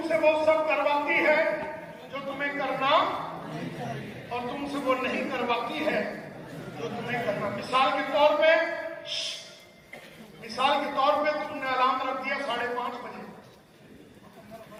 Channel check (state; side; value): identical; both; correlation 1.00